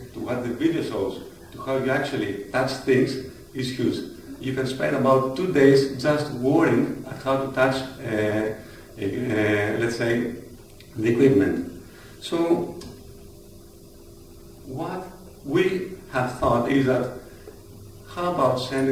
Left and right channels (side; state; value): both; identical; correlation 1.00